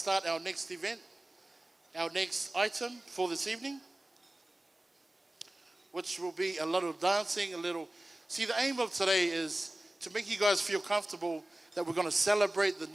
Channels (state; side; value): normal; both; correlation 0.97